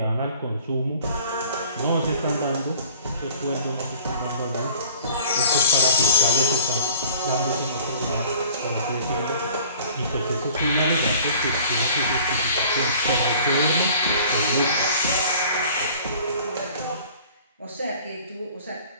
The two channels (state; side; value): inverted; both; correlation -0.49